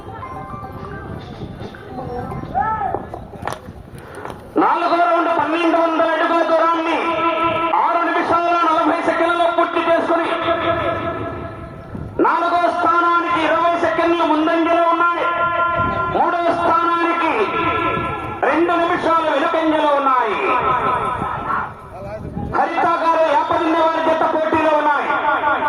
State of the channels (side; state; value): both; identical; correlation 1.00